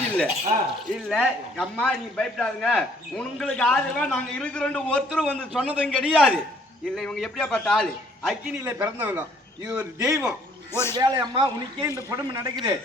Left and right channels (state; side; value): normal; both; correlation 0.62